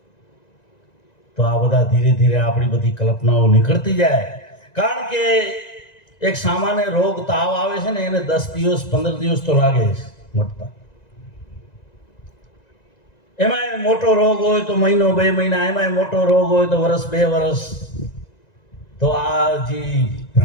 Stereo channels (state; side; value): late; right; 1.9 ms